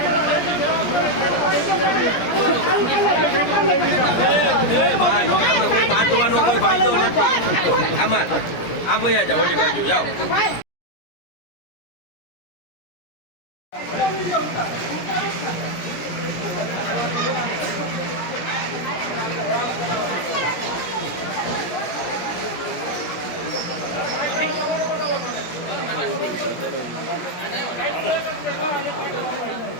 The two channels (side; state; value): right; late; 17 ms